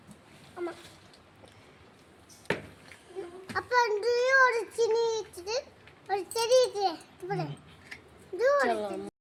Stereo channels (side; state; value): both; identical; correlation 1.00